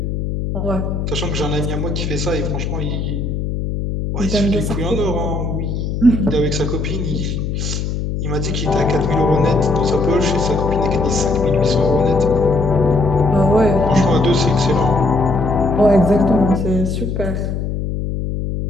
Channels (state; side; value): noise; left; hum, 3 dB below the sound